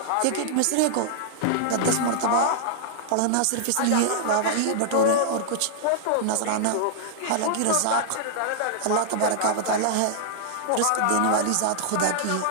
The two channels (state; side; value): different; both; correlation -0.01